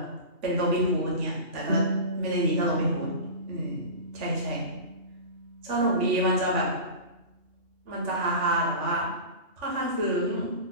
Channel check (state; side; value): late; left; 2.8 ms